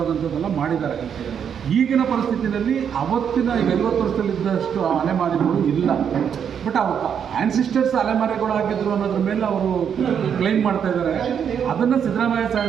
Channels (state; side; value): quieter; left; 7.9 dB